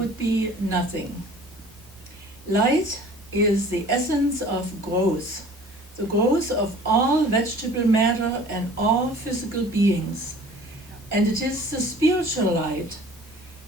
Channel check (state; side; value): normal; both; correlation 0.48